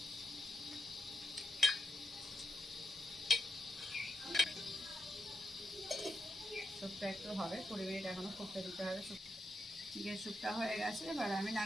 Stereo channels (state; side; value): normal; both; correlation 0.87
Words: স্যুপটা একটু হবে, 20 মিনিট এখনো ফুটতে দিতে হবে। চিকেন স্যুপটা হয়ে গেছে, এবার আমি